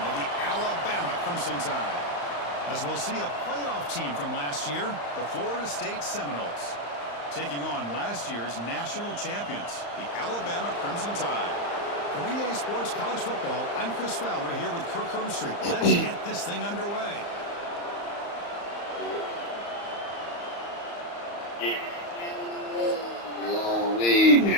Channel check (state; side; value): late; right; 35 ms